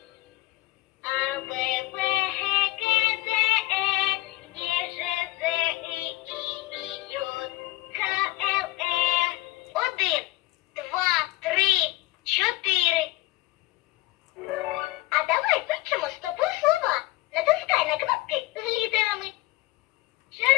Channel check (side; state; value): right; quieter; 18.8 dB